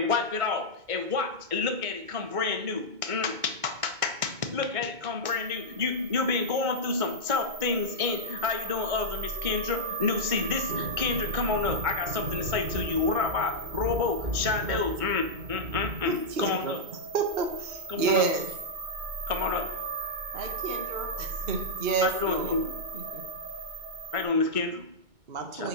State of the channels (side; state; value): left; late; 2.2 ms